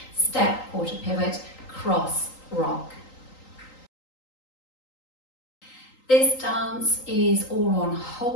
step, quarter pivot, cross, rock. This dance is all on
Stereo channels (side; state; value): right; late; 3.8 ms